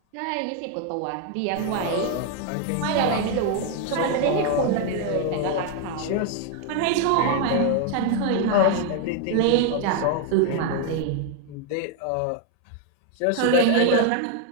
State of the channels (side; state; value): both; different; correlation 0.00